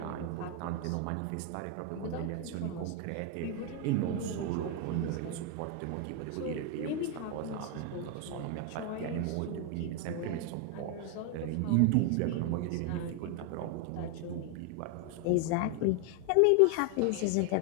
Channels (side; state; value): both; different; correlation 0.01